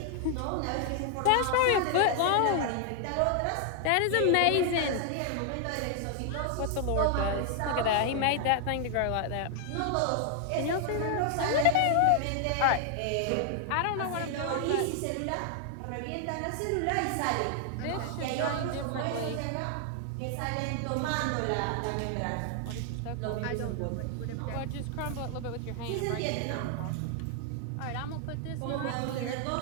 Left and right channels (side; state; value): both; different; correlation 0.00